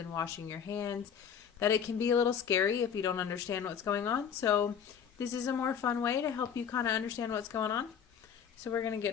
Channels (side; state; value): right; quieter; 7.7 dB